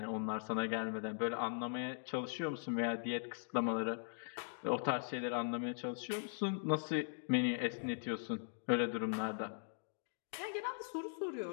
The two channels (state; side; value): silent; right; digital silence